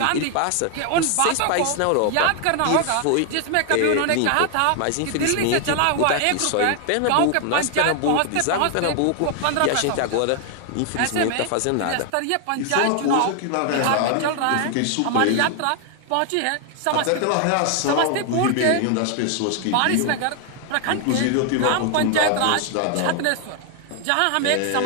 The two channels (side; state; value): both; different; correlation 0.00